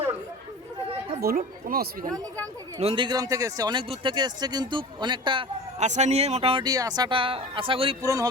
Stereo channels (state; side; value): normal; both; correlation 0.36